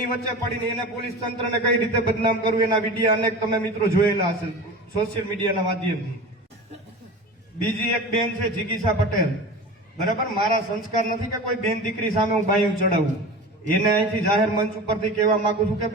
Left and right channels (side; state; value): both; normal; correlation 0.33